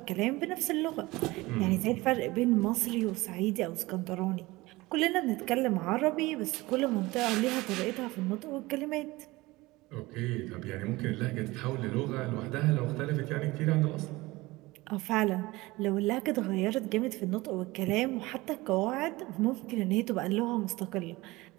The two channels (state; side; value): quieter; left; 20.7 dB